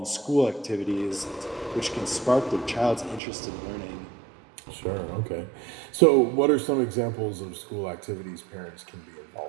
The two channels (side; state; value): left; drops out; at 3.2 s